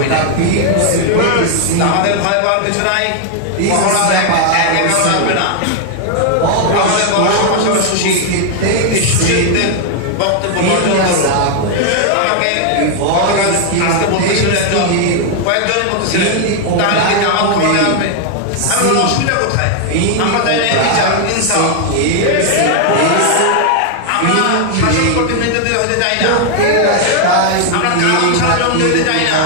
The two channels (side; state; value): both; different; correlation 0.00